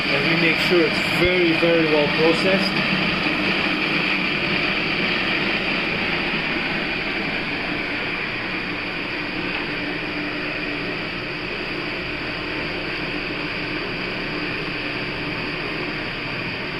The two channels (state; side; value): identical; both; correlation 1.00